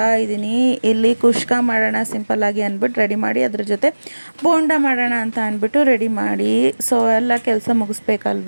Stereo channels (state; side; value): inverted; both; correlation -1.00